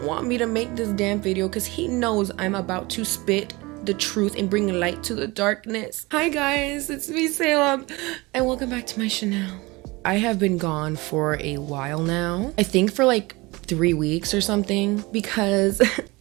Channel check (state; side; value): quieter; left; 23.2 dB